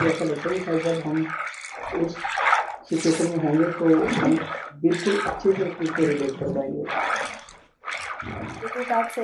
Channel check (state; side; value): identical; both; correlation 1.00